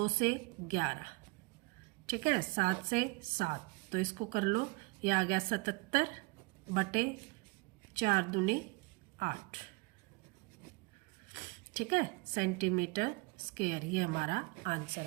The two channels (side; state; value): left; quieter; 26.7 dB